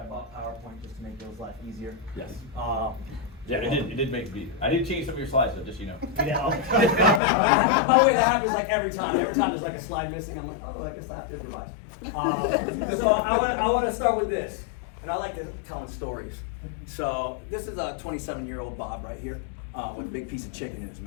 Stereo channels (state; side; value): drops out; right; at 7.2 s